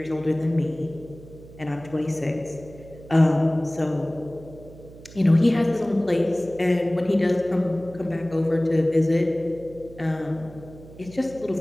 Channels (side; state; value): right; noise; hum, 19 dB below the sound